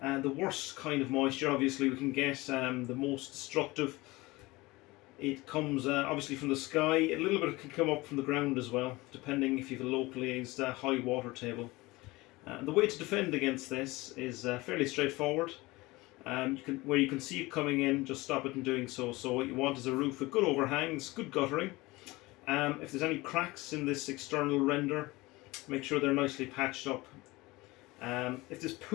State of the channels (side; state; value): right; quieter; 21.4 dB